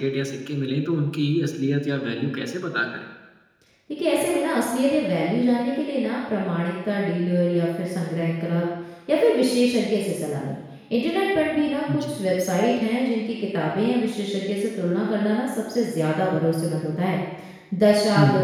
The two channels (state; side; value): identical; both; correlation 1.00